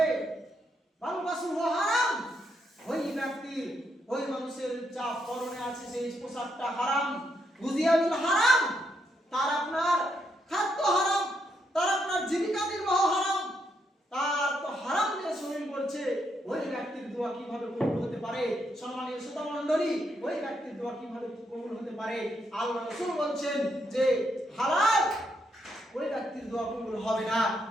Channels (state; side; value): normal; both; correlation 0.78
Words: বালবাসু হারাম, ওই ব্যক্তির, ওই মানুষের যা পরনে আছে সেই পোশাকটা হারাম, গুজিয়াবিল হারাম, তার আপনার খাদ্য হারাম, তার আপনার জীবিকা নির্বাহ হারাম, তার তো হারাম দিয়ে শরীর করছে, ওই ব্যক্তির দোয়া কিভাবে কবুল হতে পারে? সম্মানীয় শ্রোতা মণ্ডলী, ওই ব্যক্তির দোয়া কিভাবে কবুল হতে পারে? আল্লাহ রাসূল বলছেন যে হালাল, ওই ব্যক্তির দোয়া কবুল হবে না।